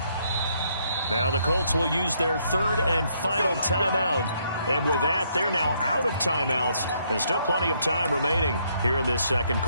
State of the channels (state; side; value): inverted; both; correlation -0.72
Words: Now the Colts will use their third and final timeout. And with that, they're now out of timeouts. And still plenty of time remaining here in this second